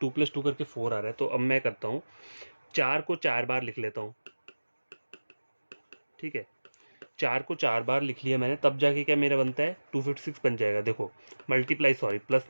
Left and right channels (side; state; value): both; inverted; correlation -1.00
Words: 2 प्लस 2 करके 4 आ रहा है। तो अब मैं करता हूँ 4 को 4 बार लिख लेता हूँ। ठीक है, 4 को 4 बार लिख लिया मैंने, तब जाके क्या मेरा बनता है 256 बन जाएगा। देखो मल्टीप्लाई, सॉरी प्लस